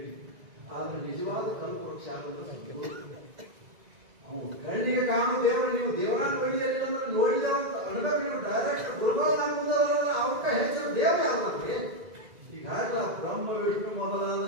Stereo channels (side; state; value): left; late; 2.0 ms